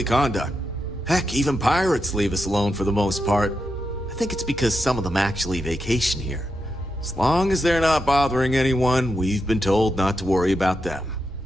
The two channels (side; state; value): both; normal; correlation 0.86